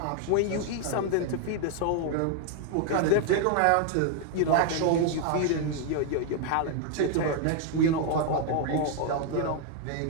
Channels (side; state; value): both; different; correlation 0.00